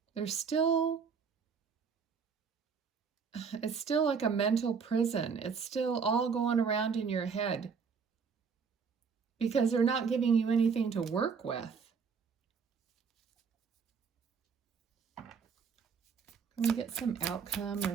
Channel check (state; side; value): quieter; left; 5.8 dB